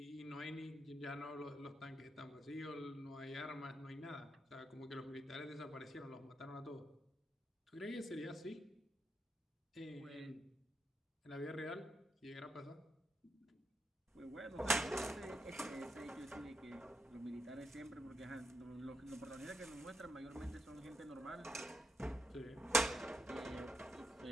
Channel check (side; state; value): both; normal; correlation 0.83